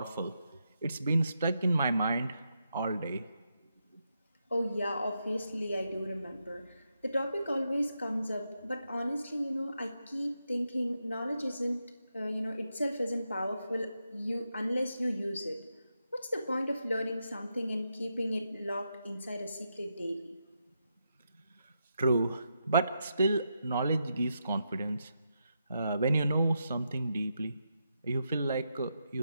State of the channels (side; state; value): both; inverted; correlation -0.83